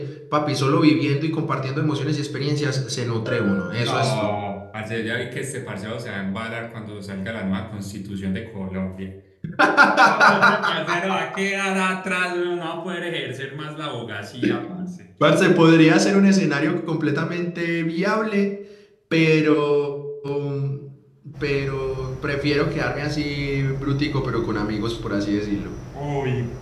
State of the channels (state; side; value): identical; both; correlation 1.00